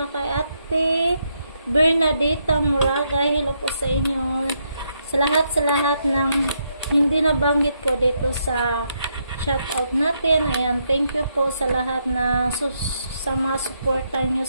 kay Ate Bernadetta Moraga, hello po sa inyo. Sa lahat ng hindi nabanggit ko dito sa shoutout natin. Ayan, thank you po sa lahat na sa mga suporta nyo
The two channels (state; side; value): inverted; both; correlation -0.78